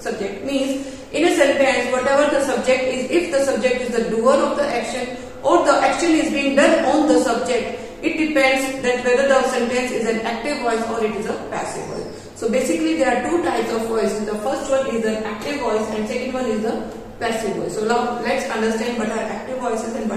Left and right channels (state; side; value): identical; both; correlation 1.00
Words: subject. Means in a sentence, whatever the subject is, if the subject is the doer of the action or the action is being done on the subject, it depends that whether the sentence is an active voice or it is a passive voice. So basically there are two types of voices. The first one is an active voice and second one is the passive voice. So now let's understand what are active voices and